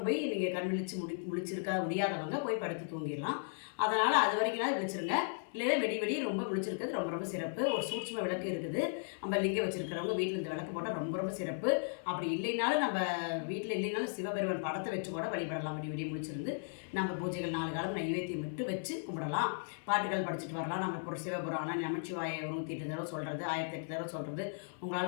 போய் நீங்கள் கண் விழிச்சு முழிச்சிருக்க முடியாதவங்க போய் படுத்து தூங்கிடலாம். அதனால் அது வரைக்கும் விழிச்சிருங்க. இல்லைன்னா வெடி ரொம்ப விழிச்சிருக்கிறது ரொம்ப சிறப்பு. ஒரு சூட்சும விளக்கு இருக்குது, நம்ம லிங்கம் வச்சுருக்கிறவங்க வீட்டில் இந்த விளக்கு போட்டால் ரொம்ப சிறப்பு. அப்படி இல்லைனாலும் நம்ம வீட்டில் இல்லைனாலும் சிவபெருமான் படத்தை வச்சு கூட வழிபடலாம். வெடி முடிச்சிருந்து நம்ம பூஜைகள் 4 காலம் நைவேத்தியம் மட்டும் வச்சு கும்பிடலாம். பாட்டுகள் படிச்சுட்டு வரலாம். நம்ம சிவபுராணம் நமச்சிவாய 108 தடவை சொல்கிறது, 1008 தடவை சொல்கிறது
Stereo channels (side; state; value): right; silent; 54 dB below the other